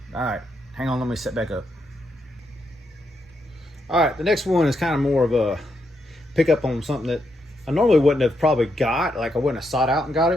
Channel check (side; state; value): both; normal; correlation 0.80